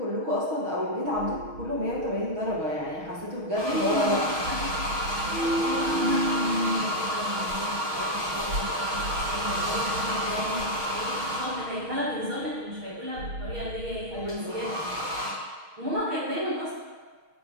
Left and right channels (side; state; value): left; late; 6.4 ms